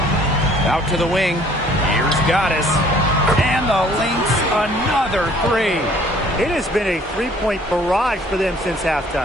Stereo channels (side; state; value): both; normal; correlation 0.57